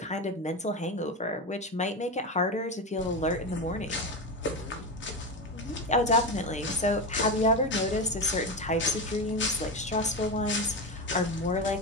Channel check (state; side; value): normal; both; correlation 0.18